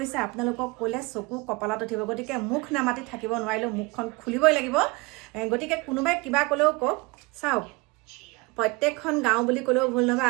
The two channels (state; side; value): quieter; left; 25.2 dB